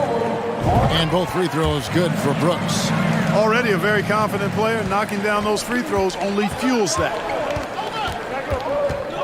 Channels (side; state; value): both; identical; correlation 1.00